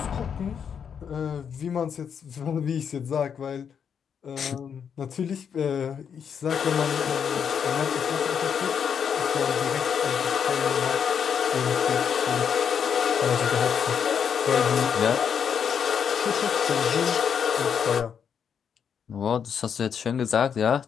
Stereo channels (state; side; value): quieter; right; 7.4 dB